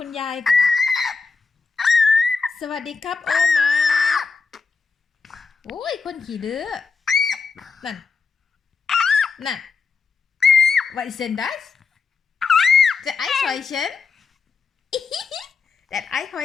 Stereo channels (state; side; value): quieter; right; 4.9 dB